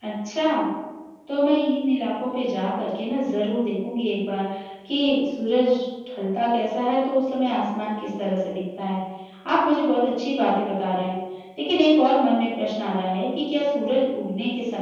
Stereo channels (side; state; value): both; identical; correlation 1.00